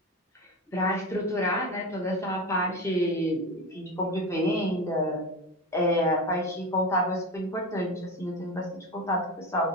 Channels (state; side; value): normal; both; correlation 0.23